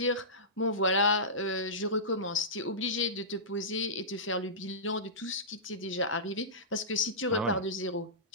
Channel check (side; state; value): both; normal; correlation -0.19